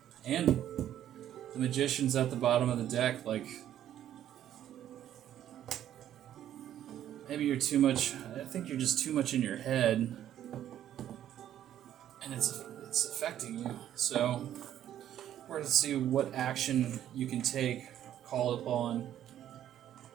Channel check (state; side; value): quieter; left; 11.3 dB